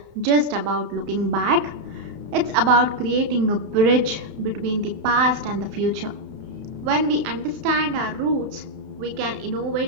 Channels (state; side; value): late; left; 31 ms